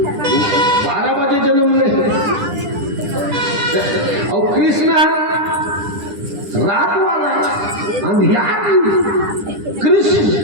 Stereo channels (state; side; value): late; left; 10 ms